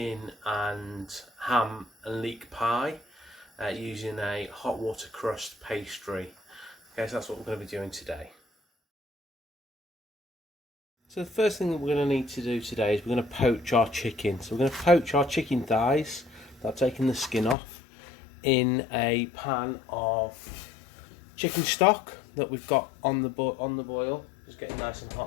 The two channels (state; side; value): drops out; right; at 17.6 s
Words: and ham and leek pie using a hot water crust pastry. Okay, so that's what we're going to be doing today. So the first thing that we're going to need to do today is we're going to poach our chicken. So we're going to poach our chicken thighs, without taking the skin off, in a pan of chicken stock that we've got on the boil. It's getting nice and